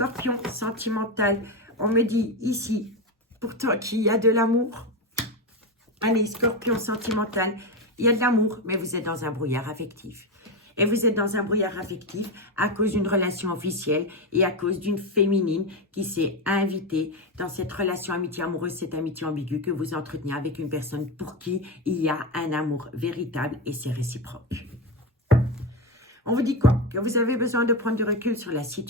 sentimental, on me dit ici, pour toi qu'il y a de l'amour. Allez, Scorpion, sentimental, il y a de l'amour, mais vous êtes dans un brouillard affectif. Et vous êtes dans un brouillard affectif à cause d'une relation officielle et à cause d'une féminine qui s'est invitée dans cette relation amitié amoureuse, cette amitié ambiguë que vous entretenez avec une personne pour qui il y a un amour véritable et c'est réciproque. On vous dit quoi? Que vous avez besoin de prendre du recul sur la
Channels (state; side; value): normal; both; correlation 0.14